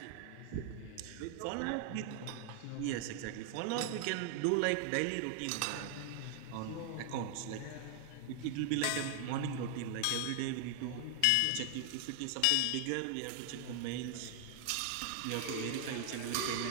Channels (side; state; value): both; different; correlation 0.00